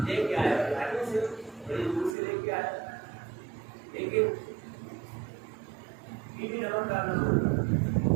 لے کے آیا گاڑی سے بڑی دور سے لے کے آیا لیکن بی بی نمک ڈالنا ہوگا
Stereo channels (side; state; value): left; drops out; at 2.1 s